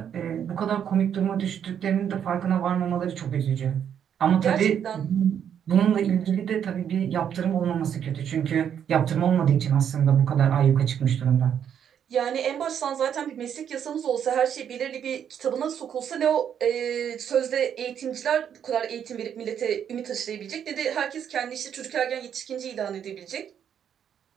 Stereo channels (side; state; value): left; quieter; 8.7 dB